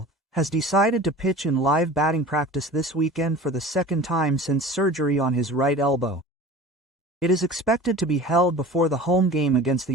has decided to pitch in live batting practice this weekend for the second time since surgery on his right elbow. It is expected to be held before the home game against the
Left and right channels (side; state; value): both; normal; correlation 0.39